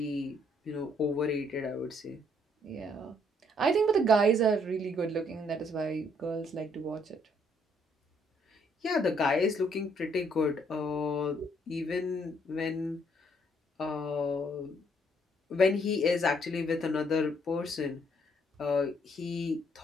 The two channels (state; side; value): normal; both; correlation 0.68